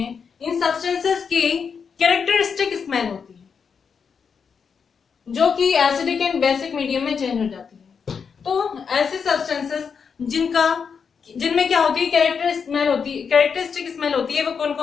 इन सब्सटेंसेस की कैरेक्टरिस्टिक स्मेल होती है जो कि एसिडिक एंड बेसिक मीडियम में चेंज हो जाती है। तो ऐसे सब्सटेंसेस जिनमें क्या होती है? कैरेक्टरिस्टिक स्मेल होती है। वो कौन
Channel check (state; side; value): quieter; right; 6.2 dB